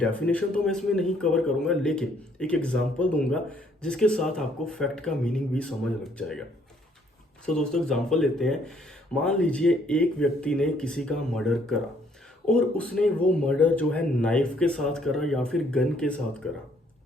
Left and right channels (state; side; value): normal; both; correlation 0.66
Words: तो मैं इसमें नहीं कवर करूंगा, लेकिन एक एग्जांपल दूंगा जिसके साथ आपको फैक्ट का मीनिंग भी समझ लग जाएगा। सो दोस्तों, एग्जांपल लेते हैं। मान लीजिए एक व्यक्ति ने किसी का मर्डर करा, और उसने वो मर्डर जो है नाइफ के साथ करा या फिर गन के साथ करा।